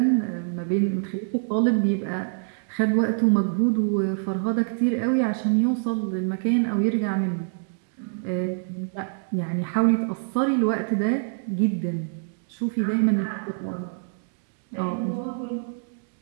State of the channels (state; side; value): silent; left; digital silence